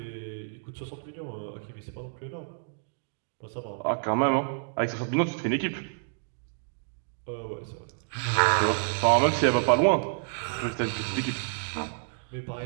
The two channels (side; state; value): left; silent; digital silence